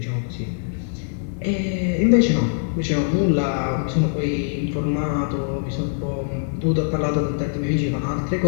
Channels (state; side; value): silent; right; digital silence